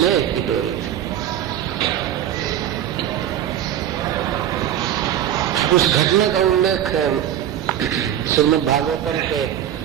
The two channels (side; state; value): left; quieter; 10.8 dB